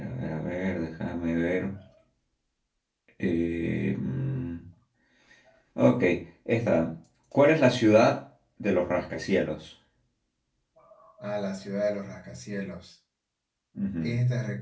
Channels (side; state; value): both; identical; correlation 1.00